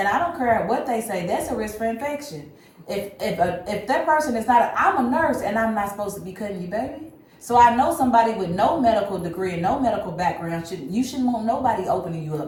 I don't care what they say, that's a risk for infection. If that person is not, I'm a nurse and I'm not supposed to be cutting you, baby. So I know somebody with no medical degree and no medical background you shouldn't want nobody opening you up,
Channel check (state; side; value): identical; both; correlation 1.00